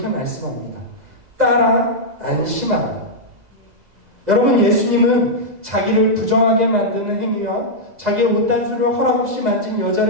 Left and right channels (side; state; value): left; late; 2.0 ms